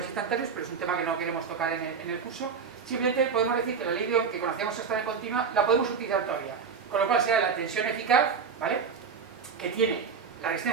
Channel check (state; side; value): quieter; left; 6.0 dB